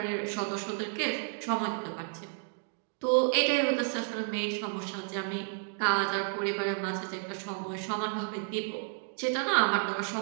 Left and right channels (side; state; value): left; silent; 57 dB below the other